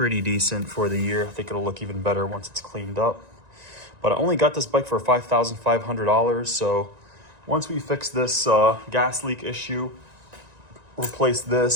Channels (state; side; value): late; left; 1.9 ms